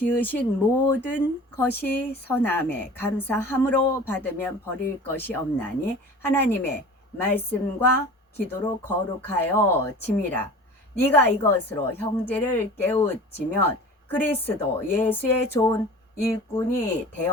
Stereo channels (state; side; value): normal; both; correlation 0.40